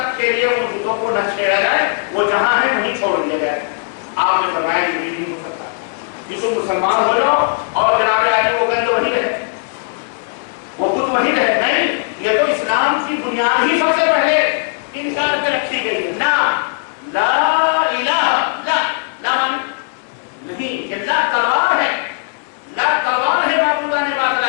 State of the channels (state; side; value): silent; right; 68 dB below the other